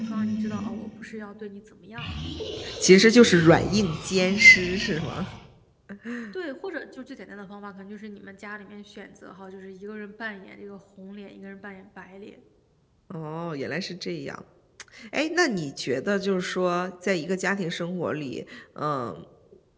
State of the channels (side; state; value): both; identical; correlation 1.00